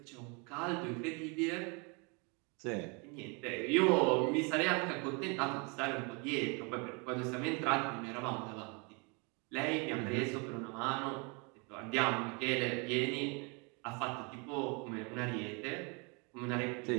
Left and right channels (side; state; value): left; quieter; 32.1 dB